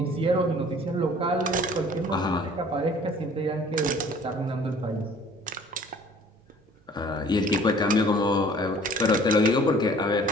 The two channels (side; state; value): both; normal; correlation 0.52